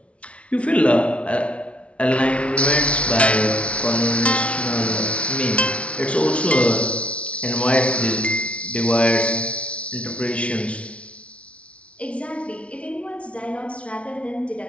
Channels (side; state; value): right; late; 0.062 ms